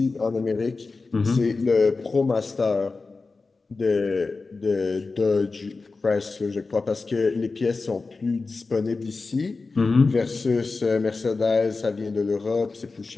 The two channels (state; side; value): quieter; right; 3.9 dB